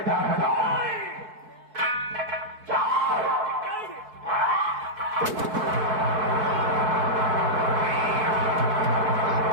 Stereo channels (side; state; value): left; late; 4.6 ms